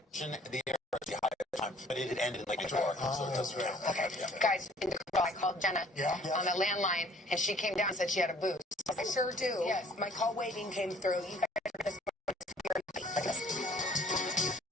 to mention the air was high at the time, but it had ended in like New-York, so it doesn't really. Okay, guys, I called Jenna on the landline, and she came down and said she had a boost. I sure do. Yes. My call waiting came through. You guys are just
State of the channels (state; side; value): normal; both; correlation 0.57